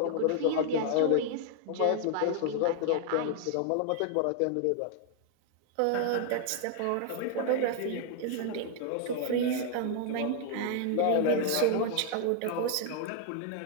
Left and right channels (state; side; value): different; both; correlation 0.00